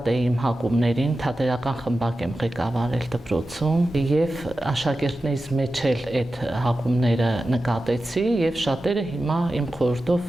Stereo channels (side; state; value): both; normal; correlation 0.93